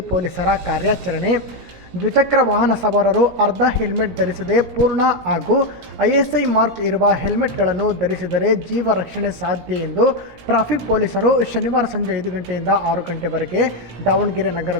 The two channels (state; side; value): late; left; 17 ms